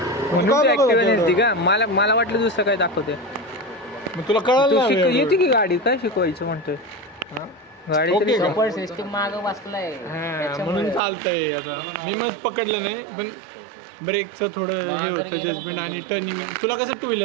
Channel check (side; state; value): left; drops out; at 11.0 s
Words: का मला वाटलं दुसरं काय दाखवते. मग तुला कळलं ना येते की गाडी काय शिकवायचं म्हणतोय. गाडी ओके तरी का? सपोर्ट सिस्टीम मागं बसलाय म्हणून चालतंय. आता मी मग पकडलं नाही, पण ब्रेकचं थोडं हे होतं जजमेंट आणि टर्निंग. तुला कसं टू